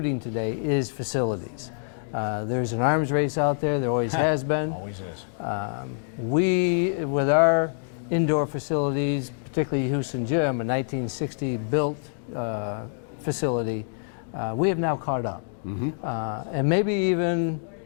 today is facilities. There's an arms race out there, there always has been. Always is. We, with our indoor facilities, particularly Houston Gym, a 1960 built facility, we have now caught up. Mm-hmm. And maybe even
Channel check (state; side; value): silent; right; digital silence